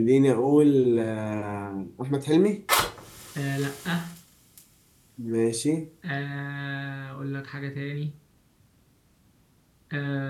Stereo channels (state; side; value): identical; both; correlation 1.00